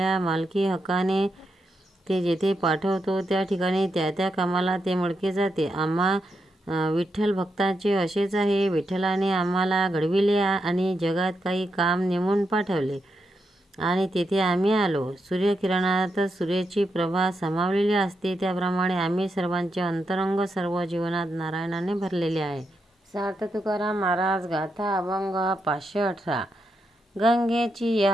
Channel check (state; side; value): normal; both; correlation 0.84